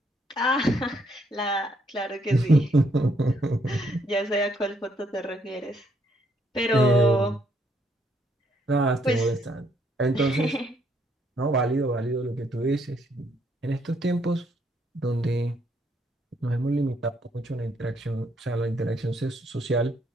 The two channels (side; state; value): both; normal; correlation 0.71